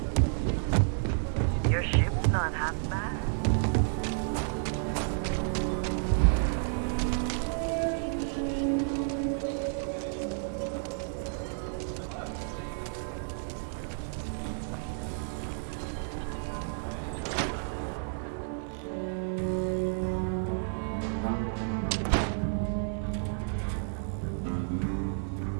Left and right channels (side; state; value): left; silent; 56 dB below the other